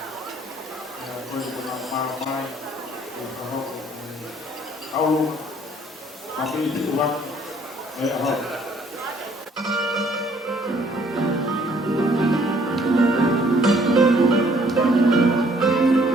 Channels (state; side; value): normal; both; correlation 0.62